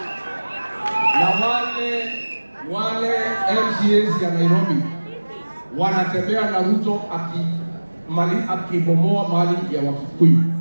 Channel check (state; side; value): inverted; both; correlation -1.00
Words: Na wale MCAs ya Nairobi wanatembea na Ruto mali akibomoa mali ya Wakikuyu,